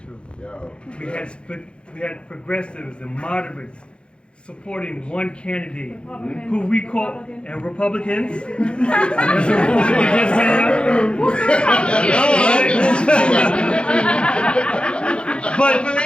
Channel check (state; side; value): late; right; 0.056 ms